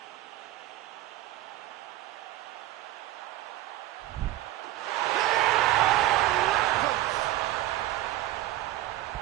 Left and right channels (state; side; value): quieter; left; 15.1 dB